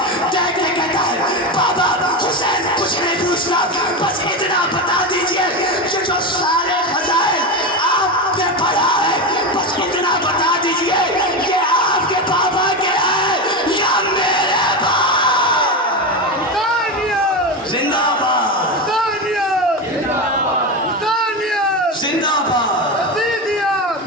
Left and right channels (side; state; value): both; normal; correlation 0.17